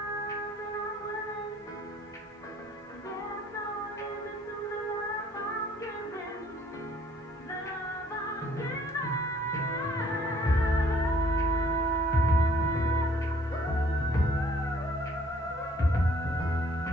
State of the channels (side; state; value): both; normal; correlation 0.60